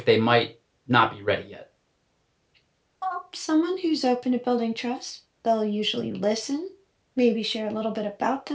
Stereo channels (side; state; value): both; identical; correlation 1.00